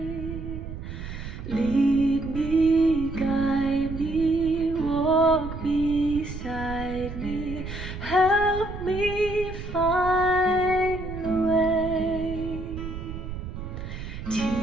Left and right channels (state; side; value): noise; right; rumble, 9 dB below the sound